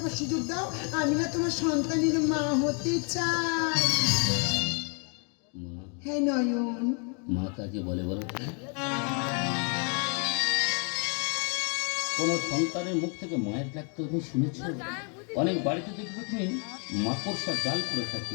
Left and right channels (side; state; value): right; quieter; 39.0 dB